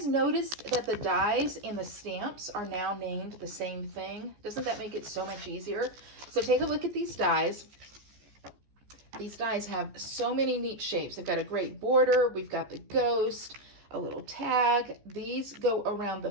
noticed that the dies and the stamps are now named the same thing? Doesn't that make it so much easier? So take a look at these dies. These dies have so many neat shapes. They've got a great border. We've got the ghost, a little tag. These go around the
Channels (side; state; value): left; late; 14 ms